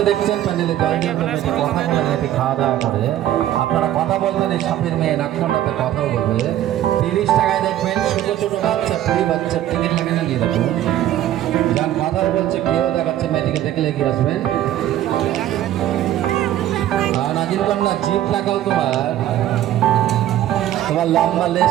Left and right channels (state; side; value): quieter; left; 12.5 dB